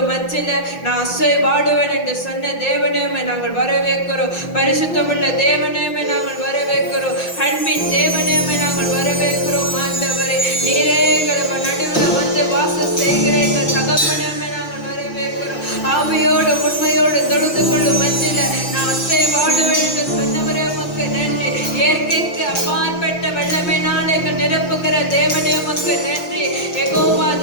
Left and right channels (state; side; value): late; right; 6.0 ms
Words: மத்தியில நான் அசைவாடுவேன் என்று சொன்ன தேவனே, நாங்கள் வரவேற்கிறோம். பரிசுத்தமுள்ள தேவனே, நாங்கள் வரவேற்கிறோம். அன்பின் தேவனே, நாங்கள் வரவேற்கிறோம். ஆண்டவரே, நீரே எங்கள் நடுவில் வந்து வாசம் செய்கிற எங்கள் தகப்பனே, நாங்கள் வரவேற்கிறோம். ஆவியோடு உண்மையோடு தொழுது கொள்ளும் மத்தியில நான் அசைவாடுவேன் என்று சொன்னவரே, உமக்கு நன்றி. இயற்கைக்கு அப்பாற்பட்ட வெள்ளமையினால் எங்கள் நிரப்புகிற தேவனே, உமக்கு நன்றி. யெகோவா